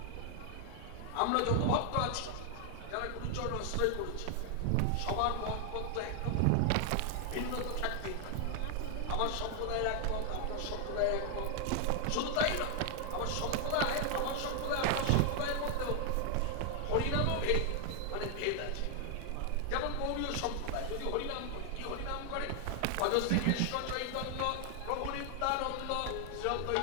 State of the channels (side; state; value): both; different; correlation 0.00